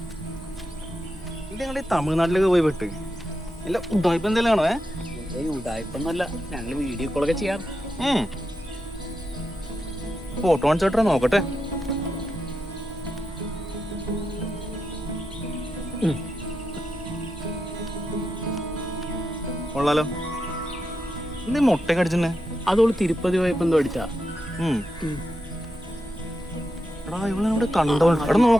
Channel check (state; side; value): normal; both; correlation 0.86